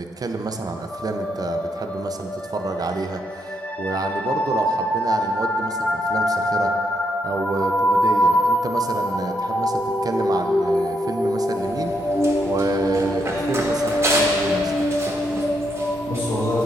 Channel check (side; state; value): both; normal; correlation 0.78